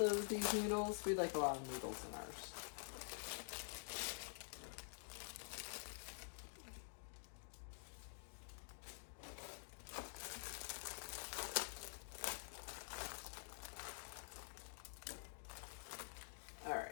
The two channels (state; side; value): silent; right; digital silence